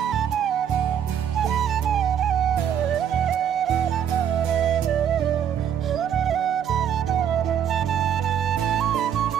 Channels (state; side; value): quieter; left; 9.1 dB